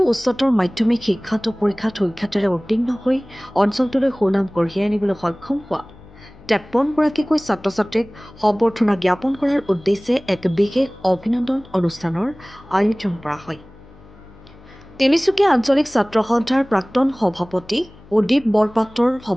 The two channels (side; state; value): left; noise; hum, 23 dB below the sound